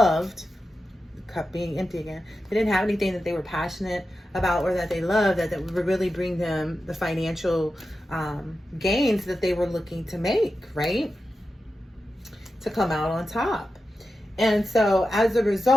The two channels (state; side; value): normal; both; correlation 0.91